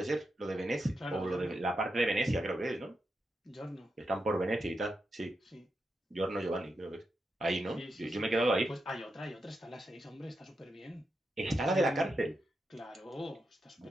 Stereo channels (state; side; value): normal; both; correlation 0.86